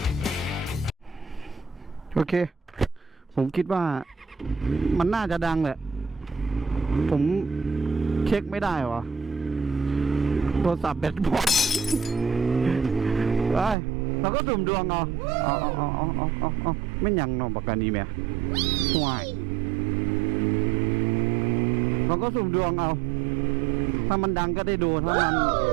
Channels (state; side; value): drops out; left; at 13.8 s